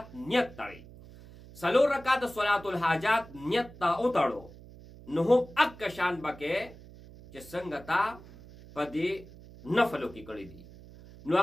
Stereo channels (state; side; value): noise; right; hum, 19 dB below the sound